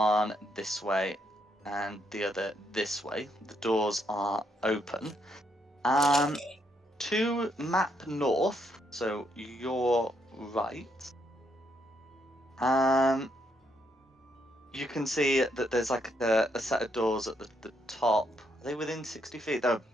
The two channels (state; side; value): normal; both; correlation 0.75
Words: this way and the other this way. The doors are open. To map north, so your right. You can see that there's like a set of doors at the top. Are they within 60 feet? They're